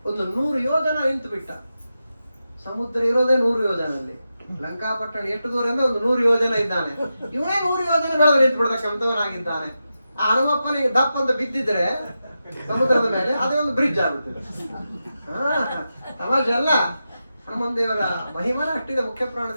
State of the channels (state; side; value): inverted; both; correlation -0.89